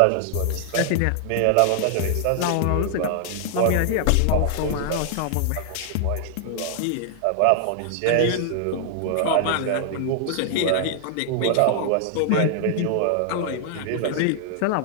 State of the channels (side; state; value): both; different; correlation -0.01